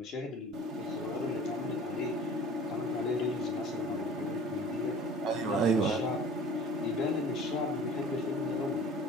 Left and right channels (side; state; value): both; normal; correlation 0.45